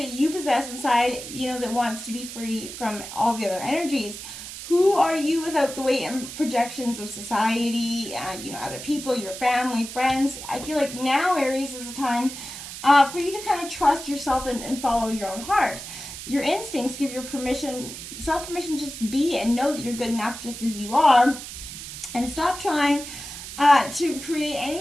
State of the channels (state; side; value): noise; right; hiss, 10 dB below the sound